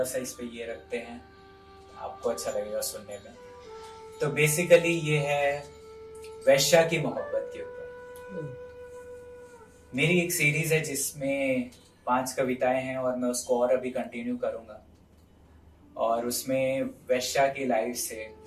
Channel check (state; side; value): identical; both; correlation 1.00